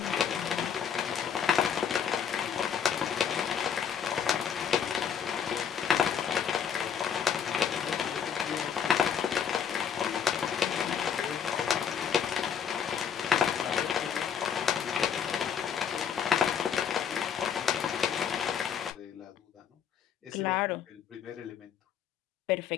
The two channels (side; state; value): right; quieter; 7.7 dB